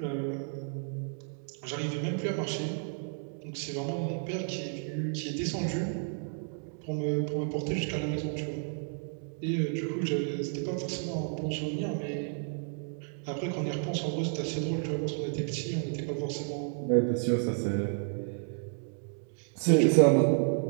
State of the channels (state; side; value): silent; left; 57 dB below the other